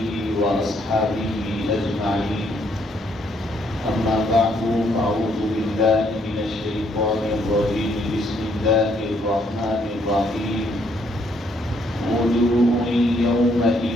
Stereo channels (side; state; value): both; normal; correlation 0.69